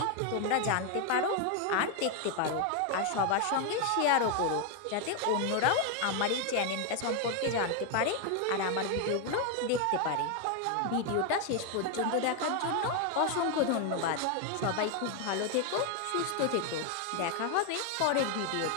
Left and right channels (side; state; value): both; different; correlation 0.01